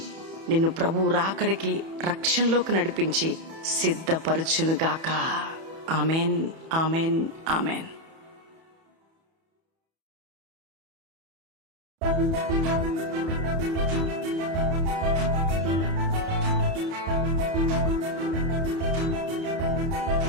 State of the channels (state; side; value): late; left; 31 ms